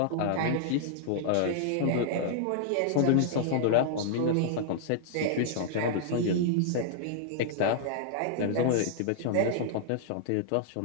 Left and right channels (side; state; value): both; different; correlation -0.01